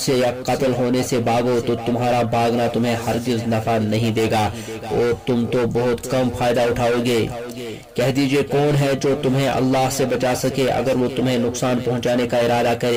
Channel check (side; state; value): both; identical; correlation 1.00